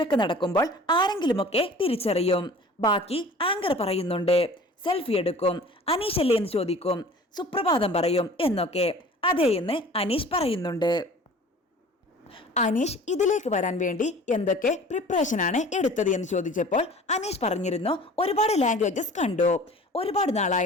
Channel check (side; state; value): both; normal; correlation 0.45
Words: നടക്കുമ്പോൾ ആരെങ്കിലുമൊക്കെ തിരിച്ചറിയും. ബാക്കി ആങ്കർ പറയുന്നുണ്ട് സെൽഫി എടുക്കും, അനീഷ് അല്ലേ എന്ന് ചോദിക്കും, സുപ്രഭാതം പറയും എന്നൊക്കെ. അതേ എന്ന് അനീഷ് പറയുന്നുണ്ട്. അനീഷ് ഇതിലേക്ക് വരാൻ വേണ്ടി എന്തൊക്കെ പ്രിപ്പറേഷനാണ് എടുത്തത് എന്ന് ചോദിച്ചപ്പോൾ അനീഷ് പറഞ്ഞിരുന്നു ഒരുപാട് ലാംഗ്വേജസ് കണ്ടു, ഒരുപാട്